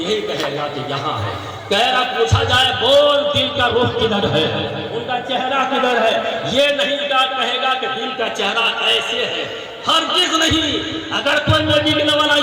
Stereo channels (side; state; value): both; identical; correlation 1.00